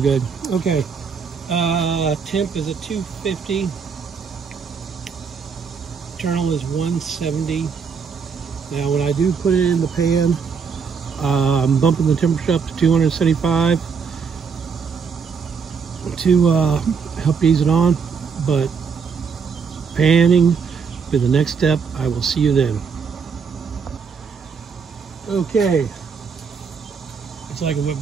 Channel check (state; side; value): quieter; left; 5.9 dB